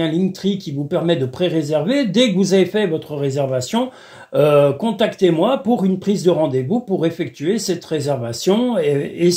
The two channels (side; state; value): both; identical; correlation 1.00